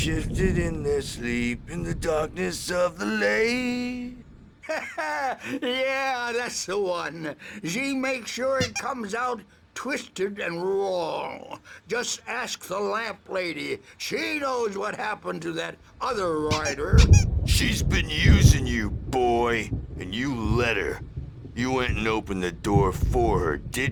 in their sleep in the darkness of the lake. Yeah, that's the one. She makes sure it comes out twisted and wrong. Just ask the lamp lady. She knows what happened to that other rider. She's been using you, boy, and you let her. You went and opened the door for her,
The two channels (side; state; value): both; identical; correlation 1.00